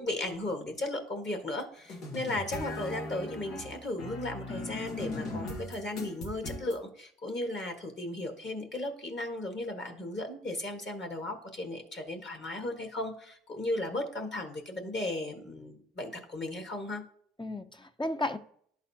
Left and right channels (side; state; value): both; normal; correlation 0.59